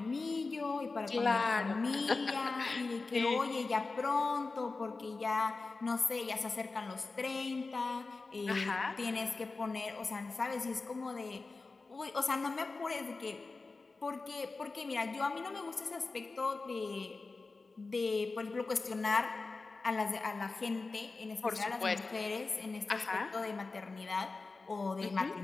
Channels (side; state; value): right; quieter; 3.8 dB